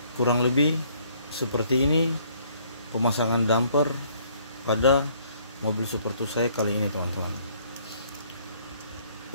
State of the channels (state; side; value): inverted; both; correlation -0.63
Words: kurang lebih seperti ini pemasangan damper pada mobil Super 2 saya kali ini teman-teman.